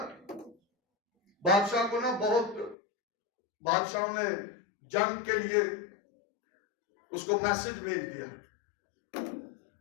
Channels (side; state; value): right; drops out; at 2.8 s